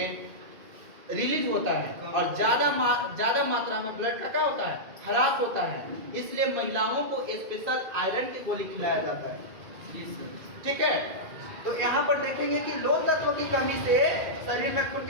रिलीज होता है और ज्यादा मात्रा में ब्लड का क्या होता है, ह्रास होता है। इसलिए महिलाओं को स्पेशल आयरन की गोली खिलाया जाता है। ठीक है। तो यहाँ पर देखेंगे कि लोह तत्व की कमी से शरीर में खून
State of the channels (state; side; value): late; left; 2.2 ms